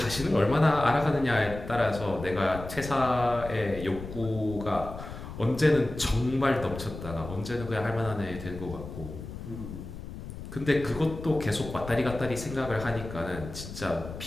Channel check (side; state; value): left; noise; rumble, 11 dB below the sound